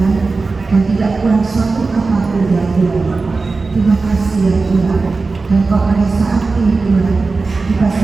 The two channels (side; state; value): left; quieter; 3.9 dB